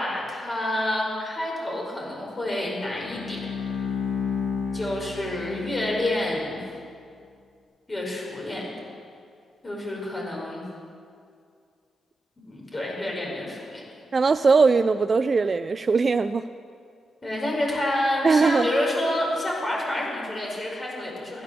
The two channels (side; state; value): both; normal; correlation 0.87